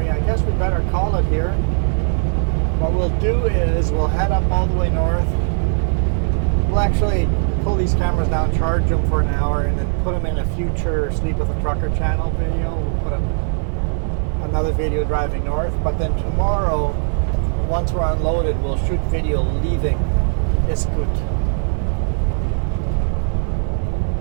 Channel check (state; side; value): silent; left; 66 dB below the other